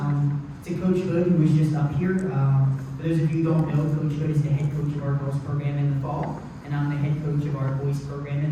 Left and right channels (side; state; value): both; identical; correlation 1.00